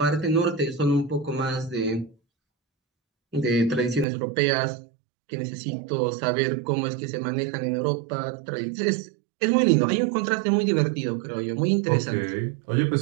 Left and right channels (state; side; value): drops out; left; at 4.0 s